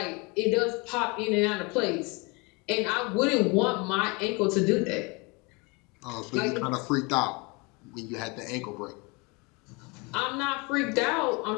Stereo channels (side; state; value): right; quieter; 28.1 dB